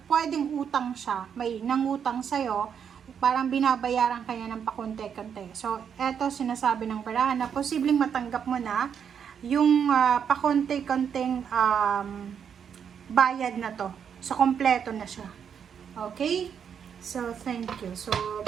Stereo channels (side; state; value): left; quieter; 7.6 dB